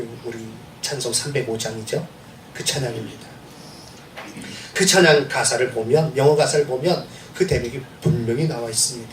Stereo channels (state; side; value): identical; both; correlation 1.00